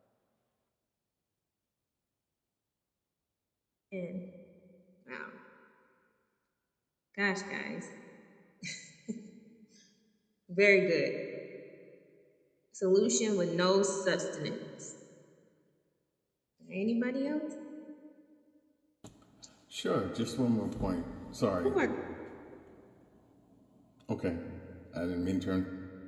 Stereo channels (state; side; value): identical; both; correlation 1.00